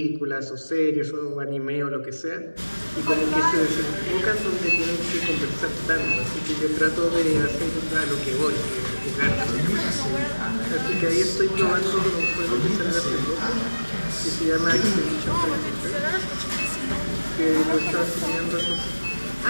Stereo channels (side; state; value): both; inverted; correlation -1.00